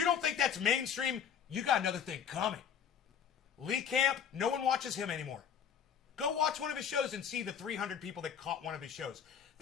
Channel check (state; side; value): quieter; right; 8.1 dB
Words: don't think that's mainstream, you got another thing coming. Lee Camp, no one watches him anymore. Go watch one of his shows and see the 300 people that caught one of his shows.